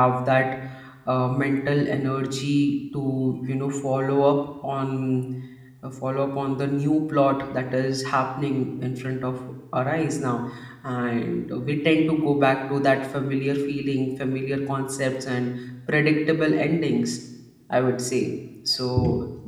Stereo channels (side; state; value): both; identical; correlation 1.00